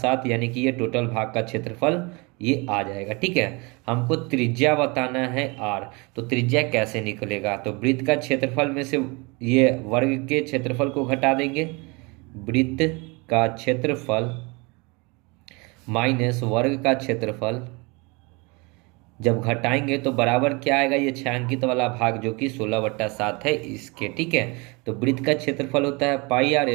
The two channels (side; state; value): left; quieter; 27.9 dB